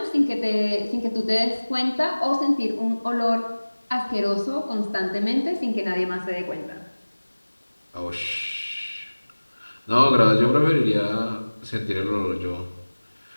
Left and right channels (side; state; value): both; inverted; correlation -1.00